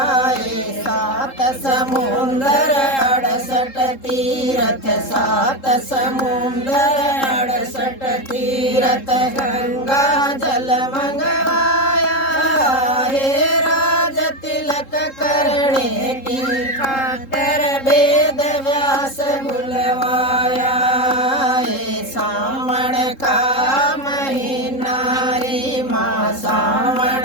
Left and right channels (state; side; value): late; right; 3.7 ms